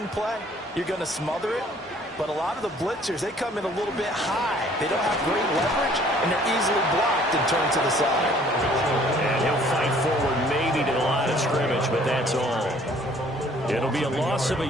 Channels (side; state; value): both; normal; correlation 0.57